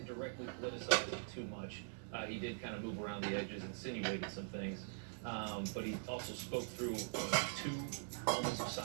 directly criticize it too much. He did kind of move around the edges, insinuated some things, but he also spoke through 2 moments of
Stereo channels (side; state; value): left; silent; digital silence